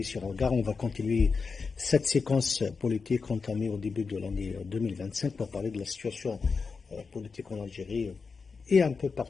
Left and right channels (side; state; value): right; quieter; 4.9 dB